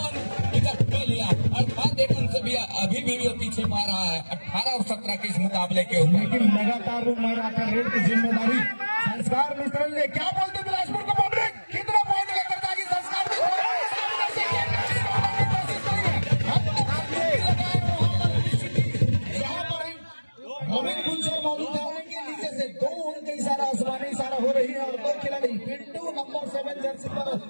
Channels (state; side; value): inverted; both; correlation -1.00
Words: तो लिया अर्थात एक अंक से भी अभी भी वो पीछे पा रहा है 18 और 17 के इस मुकाबले के ऊपर। लेकिन लगातार वो मैराथन रेड की जिम्मेदारी संस्कार मिश्रा ने। क्या बोलते बिलासपुर को पब्लिक कितना पॉइंट लेकर जाएगी संस्कार रविंद्र गुलशन मौजूद है उनके नीचे से 2 उनके इशारा आसमानी इशारा हो रही है और 2 खिलाड़ी पिंटू नंबर 7 जर्सी पर